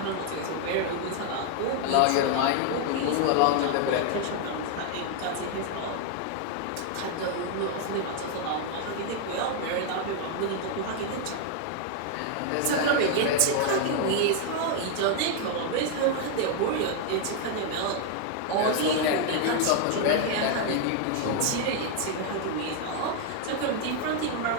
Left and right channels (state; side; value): different; both; correlation 0.00